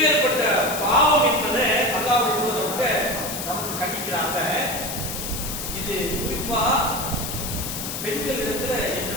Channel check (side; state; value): left; noise; hiss, 5 dB below the sound